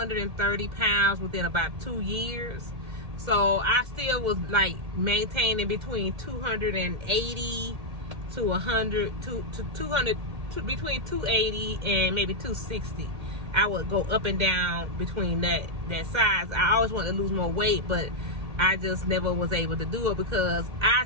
pounds within about 2 years. So I still was maintaining between 280 to 100 to 200, between 280 and maybe 260. I would go up and down between that size. I always wanted to lose more weight, but I just never was able to do it because I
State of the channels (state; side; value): late; left; 2.1 ms